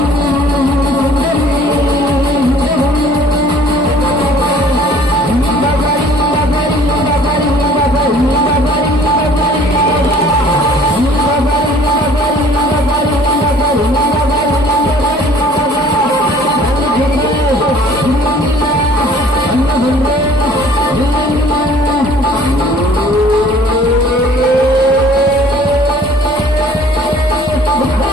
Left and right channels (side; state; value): both; normal; correlation 0.52